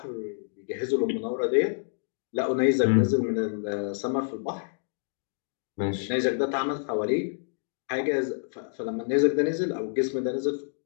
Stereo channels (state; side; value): silent; right; digital silence